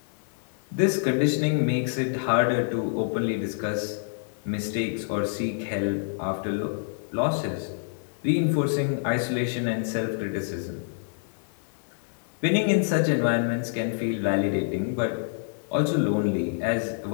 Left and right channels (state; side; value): silent; right; 58 dB below the other